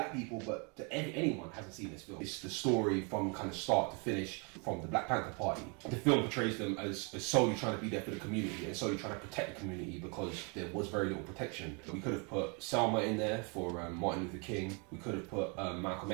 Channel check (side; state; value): left; quieter; 34.0 dB